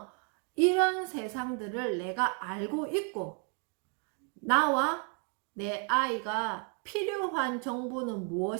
이런 세상들을 내가 알고 있고 나와 내 아이가 필요한 정보는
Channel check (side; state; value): left; quieter; 39.9 dB